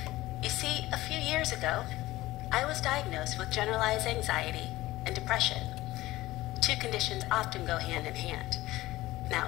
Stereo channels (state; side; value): quieter; right; 17.4 dB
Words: You see, a few years ago, I was diagnosed with generalized anxiety and depression. Two conditions often go hand in hand. Now,